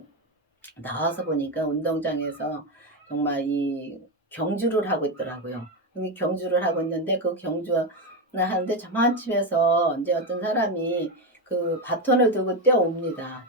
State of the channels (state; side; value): normal; both; correlation 0.11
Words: 나와서 보니까 운동장에서 정말 이 경주를 하고 있더라고요. 이 경주를 하고 있는데 그 경주를 하는데 저만침에서 이제 어떤 사람이 그 바톤을 들고 뛰어옵니다.